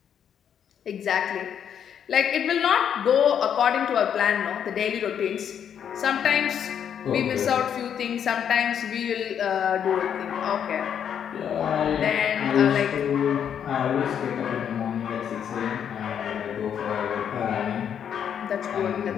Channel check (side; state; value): right; quieter; 8.6 dB